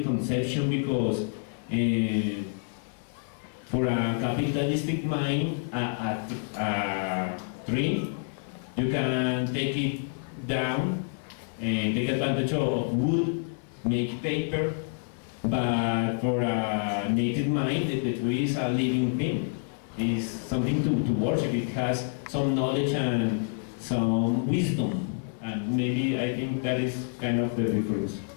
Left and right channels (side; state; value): right; silent; 59 dB below the other